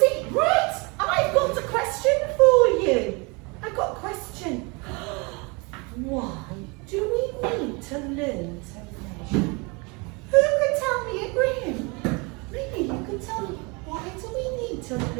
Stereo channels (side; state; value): left; quieter; 29.1 dB